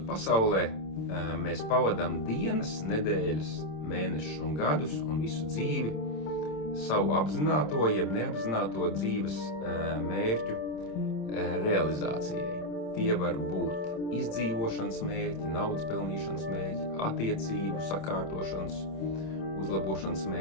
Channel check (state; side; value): late; right; 27 ms